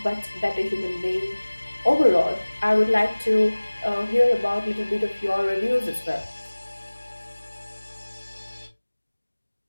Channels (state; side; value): inverted; both; correlation -1.00